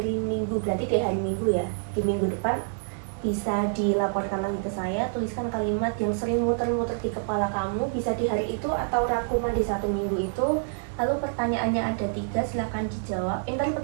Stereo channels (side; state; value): left; silent; digital silence